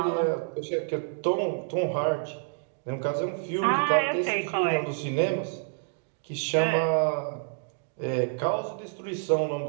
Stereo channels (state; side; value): silent; left; digital silence